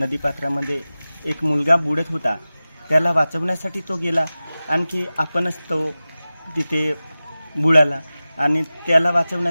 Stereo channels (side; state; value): both; inverted; correlation -0.96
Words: एक मुलगा बुडत होता, त्याला वाचवण्यासाठी तो गेला. आणखी आपणच तो तिथे बुडाला आणि त्याला